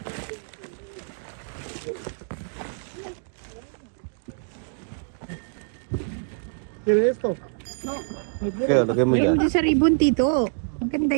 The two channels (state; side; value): silent; left; digital silence